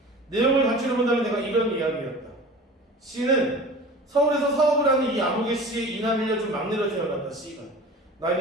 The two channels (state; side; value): normal; both; correlation 0.39